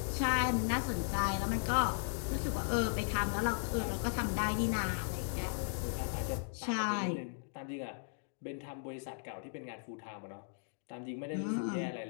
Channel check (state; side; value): silent; right; digital silence